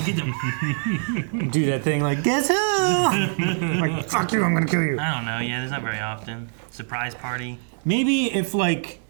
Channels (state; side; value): silent; left; digital silence